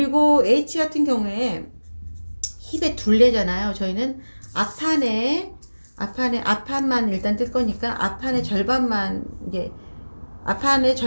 H 같은 경우에 힙의 둘레잖아요. 저희는 앞판만 일단 뜰 거니까 앞판의 절반만 이제 앞판의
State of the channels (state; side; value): inverted; both; correlation -1.00